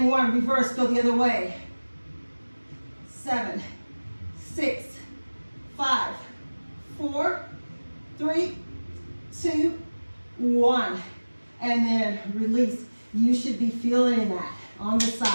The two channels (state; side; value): inverted; both; correlation -1.00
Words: 1. Reverse, go the other way. 7, 6, 5, 4, 3, 2, 1. And then release. You should be feeling that on the